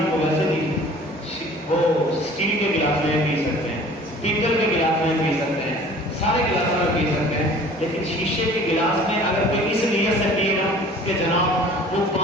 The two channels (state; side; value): normal; both; correlation 0.48